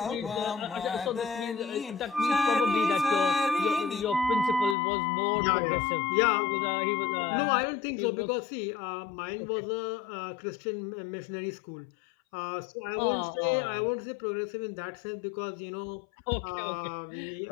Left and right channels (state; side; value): drops out; right; at 4.8 s